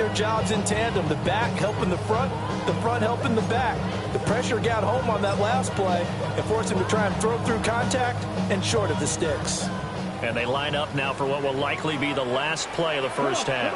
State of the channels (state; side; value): identical; both; correlation 1.00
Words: jobs in tandem. The back helping the front helping the back. The pressure got home on that last play and forced him to try and throw through contact and short of the sticks. And they line up now for what will likely be the last play of the first half.